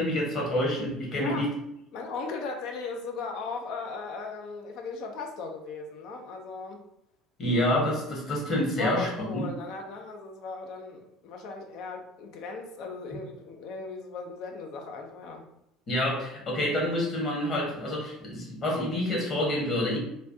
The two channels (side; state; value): both; normal; correlation 0.43